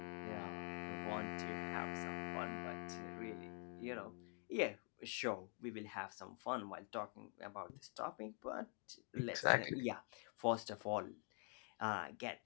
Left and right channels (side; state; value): right; quieter; 37.6 dB